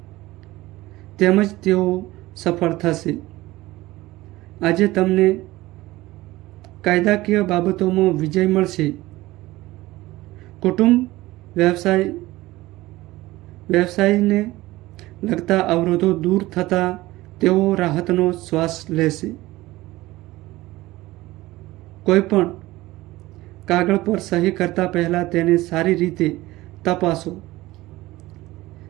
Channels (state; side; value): quieter; left; 18.3 dB